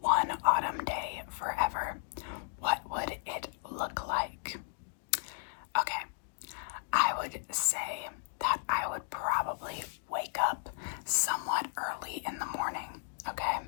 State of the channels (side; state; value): right; silent; digital silence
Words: one autumn day forever, what would it look like? Okay, I would say that I would probably wake up somewhat early in the morning, okay?